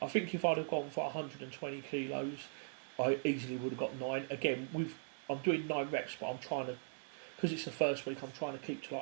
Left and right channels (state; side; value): silent; left; digital silence